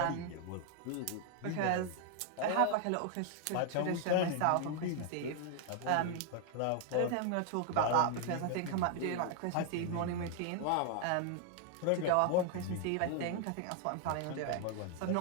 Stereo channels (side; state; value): both; different; correlation 0.00